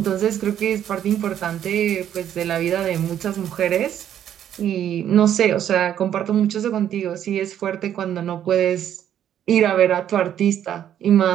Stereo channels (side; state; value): left; quieter; 10.3 dB